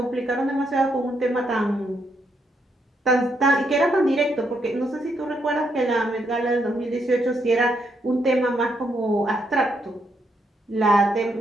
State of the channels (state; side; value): normal; both; correlation 0.77